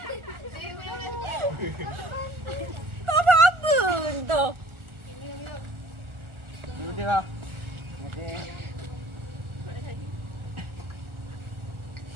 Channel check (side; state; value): left; late; 1.4 ms